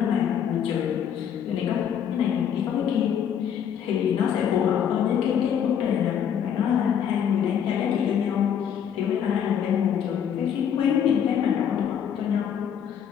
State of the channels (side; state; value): right; quieter; 8.5 dB